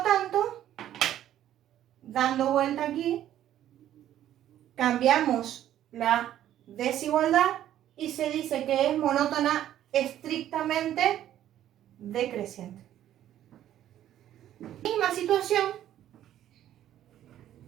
tanto, dando vuelta aquí, cambiamos la desigualdad y se dice que es monótona estrictamente decreciente. Misma situación,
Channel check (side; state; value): left; quieter; 11.9 dB